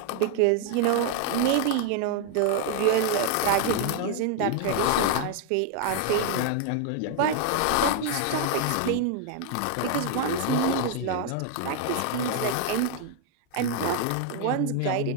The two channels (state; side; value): different; both; correlation 0.00